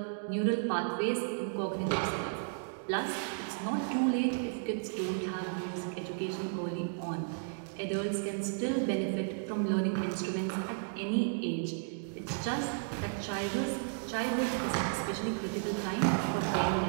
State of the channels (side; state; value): left; silent; digital silence